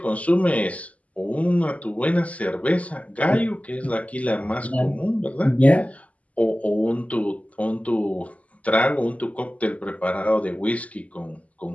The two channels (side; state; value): right; late; 0.070 ms